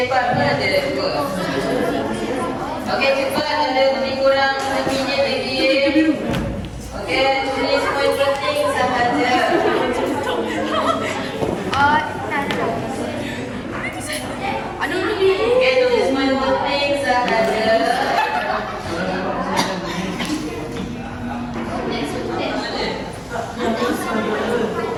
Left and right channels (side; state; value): both; identical; correlation 1.00